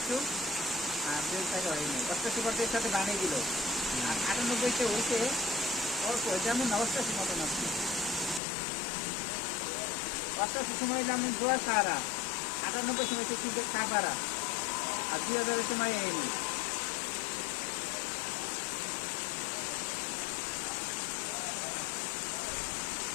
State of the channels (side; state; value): right; drops out; at 8.4 s